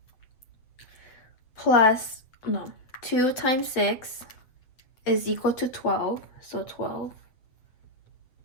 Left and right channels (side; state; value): right; late; 8.0 ms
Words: plus, 2 times 6 is equal to 12, so 12.